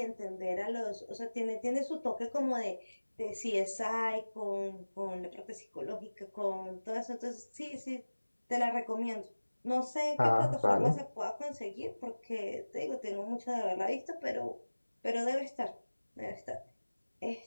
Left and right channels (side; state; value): both; inverted; correlation -1.00